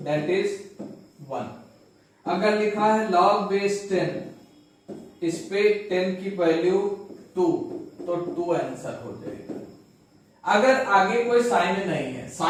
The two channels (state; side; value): identical; both; correlation 1.00